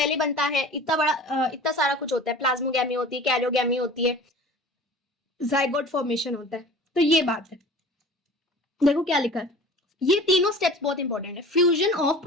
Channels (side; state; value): both; normal; correlation 0.42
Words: बनता है इतना बड़ा इतना सारा कुछ होता है, प्लाज्मोगैमी होती है, कैरियोगैमी होती है, जाइगोट फॉर्मेशन होता है। तो ये बात है, देखो क्या लिखा है, ये तीनों स्टेप्स बहुत इंपॉर्टेंट है। Fusion of